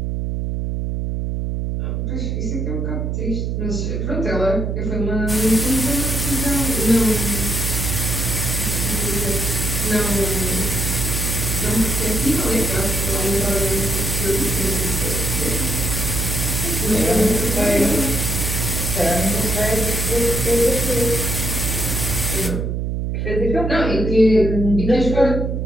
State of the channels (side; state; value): right; noise; hum, 1 dB below the sound